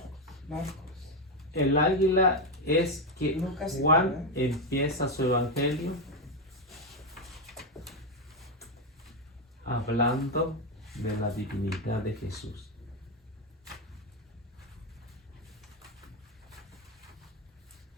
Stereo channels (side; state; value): both; normal; correlation 0.07